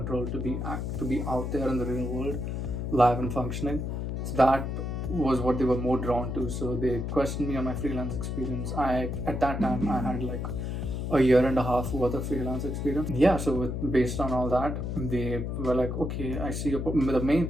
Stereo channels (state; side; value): noise; left; hum, 3 dB below the sound